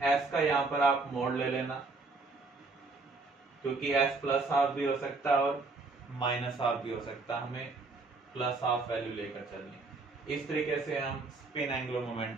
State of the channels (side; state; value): left; quieter; 3.7 dB